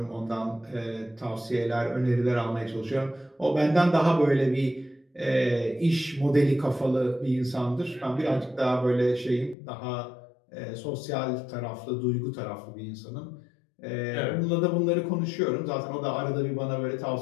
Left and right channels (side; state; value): right; drops out; at 9.6 s